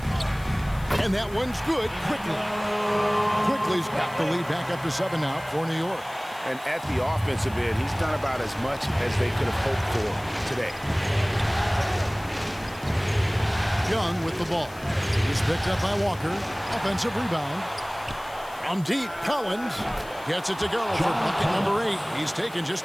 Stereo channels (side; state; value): left; noise; hiss, 22 dB below the sound